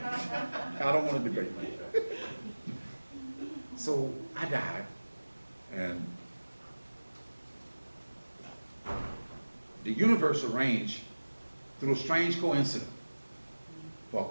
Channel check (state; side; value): inverted; both; correlation -1.00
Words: I don't want to debate. So I died, and the universe arranged, through a strange coincidence, for